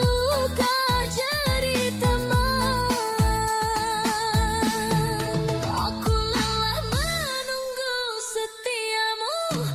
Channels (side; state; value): both; identical; correlation 1.00